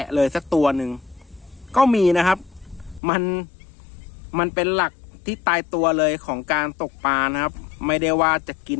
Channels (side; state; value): right; drops out; at 3.0 s